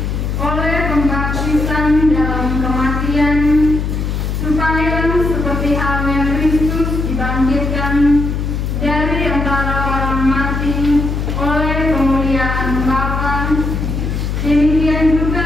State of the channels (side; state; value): left; noise; hum, 2 dB below the sound